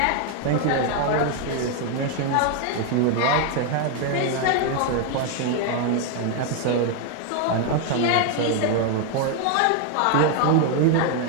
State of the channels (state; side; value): different; both; correlation 0.01